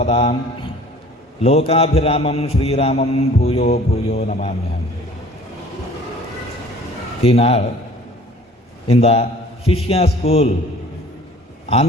लोकाभिरामं श्रीरामं भूयो भूयो नमाम्यहं. ஈநாள் இந்த சிஷ்யா ஸ்கூல்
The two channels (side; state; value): both; normal; correlation 0.49